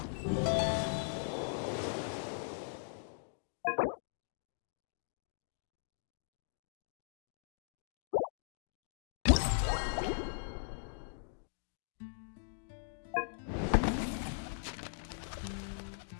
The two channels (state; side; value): silent; right; digital silence